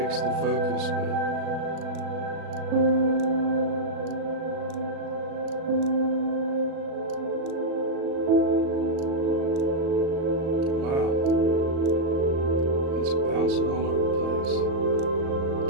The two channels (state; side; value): late; left; 37 ms